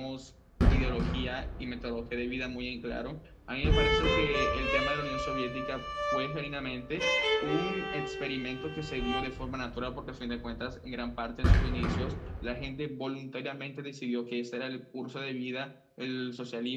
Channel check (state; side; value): identical; both; correlation 1.00